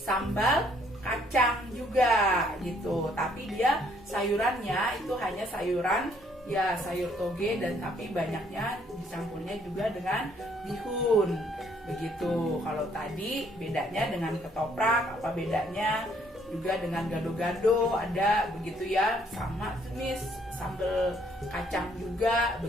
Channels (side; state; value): both; normal; correlation 0.66